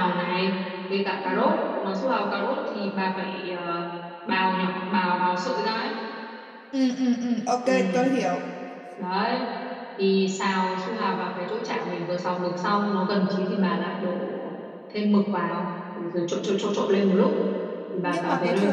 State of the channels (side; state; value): both; identical; correlation 1.00